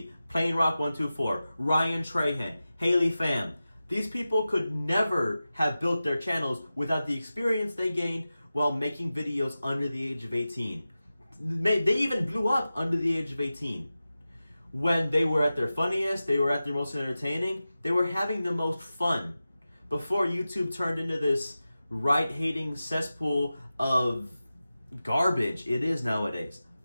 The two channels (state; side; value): inverted; both; correlation -0.94